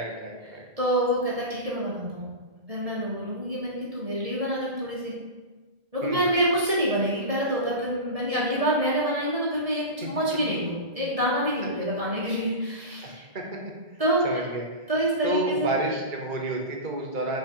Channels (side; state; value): left; late; 1.7 ms